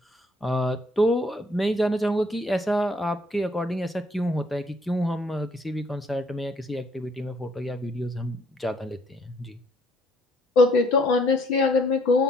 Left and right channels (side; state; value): both; normal; correlation 0.64